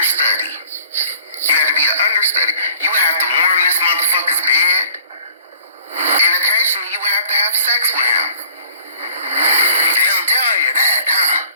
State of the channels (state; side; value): inverted; both; correlation -0.52